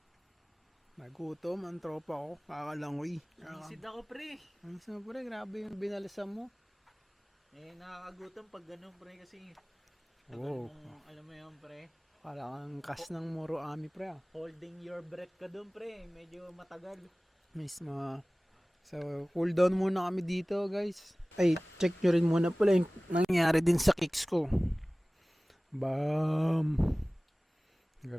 Nagutom ang tropa ko. Kakalangoy. Isid ako, pre. Ang isa pre, grabe yung binalisan mo. Eh, nakakagutom pag ganun, pre, kasi Wow. alam mo yun, pre. Parang kas ng Moro Ami pre Holding your breath ka dun, pre. Medyo matagal. Miss mga So, cool down muna kami dito, guys. Ay, check nyo rin muna pala yung nangyari din sa kicks ko. Bam!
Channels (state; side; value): normal; both; correlation 0.98